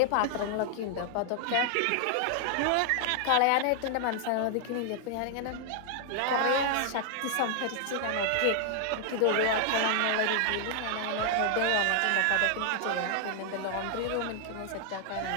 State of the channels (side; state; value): both; different; correlation 0.00